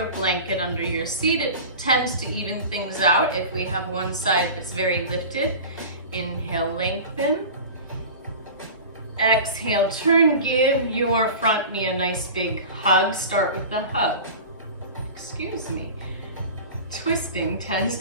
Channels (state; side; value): inverted; both; correlation -0.35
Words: blanket under your seat. It tends to even things out if we have one side that's very lifted. Inhale, lengthen. Exhale, turn. Give your front knee a nice big hug. Start with the hug. Excuse me. twisting tends